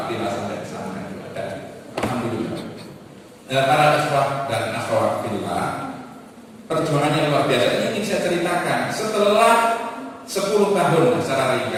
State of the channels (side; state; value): both; identical; correlation 1.00